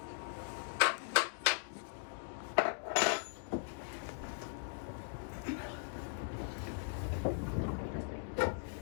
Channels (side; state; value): right; silent; digital silence